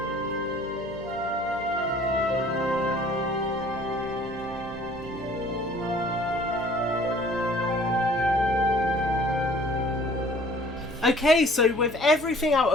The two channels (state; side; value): noise; right; hum, 16 dB below the sound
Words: Okay, so with everything out